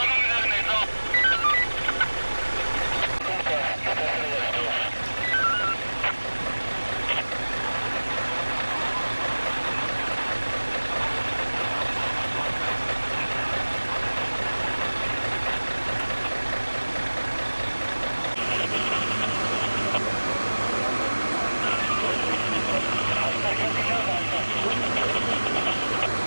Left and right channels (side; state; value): both; inverted; correlation -1.00